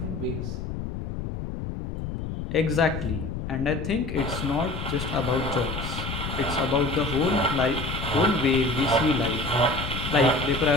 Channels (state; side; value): noise; left; rumble, 6 dB below the sound